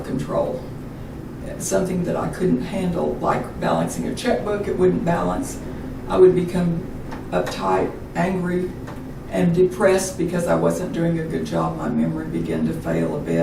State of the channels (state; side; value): identical; both; correlation 1.00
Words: control. Something that I couldn't handle, like balancing a checkbook, it wouldn't balance. I would become uptight, angry, and depressed because I wasn't doing a good job. My memory began to fail a